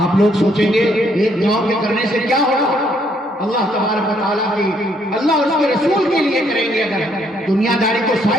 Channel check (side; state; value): both; normal; correlation 0.70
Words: لوگ سوچیں گے ایک گاؤں کے کرنے سے کیا ہوگا؟ اللہ تبارک و تعالیٰ کی، اللہ اور اس کے رسول کے لیے کریں گے۔ اگر دنیا داری کو